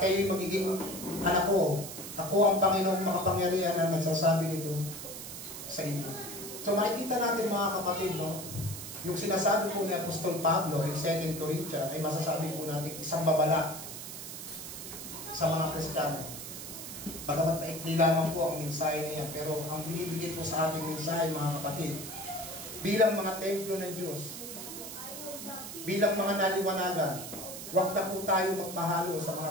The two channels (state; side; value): noise; right; hiss, 9 dB below the sound